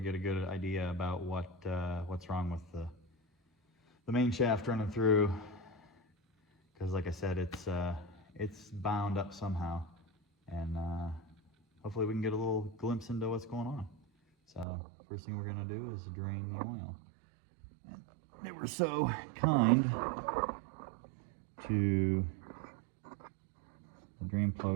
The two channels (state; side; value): drops out; left; at 14.7 s